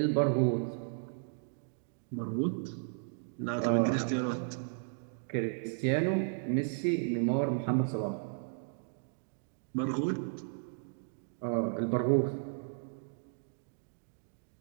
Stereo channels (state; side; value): silent; left; digital silence